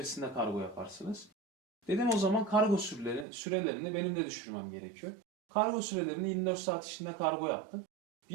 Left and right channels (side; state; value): left; drops out; at 3.2 s